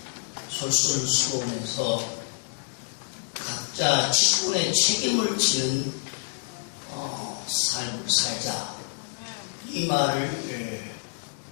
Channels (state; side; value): silent; right; digital silence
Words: 솔선수범해서 각자 직분의 책임을 지는 삶을 살자. 이 말을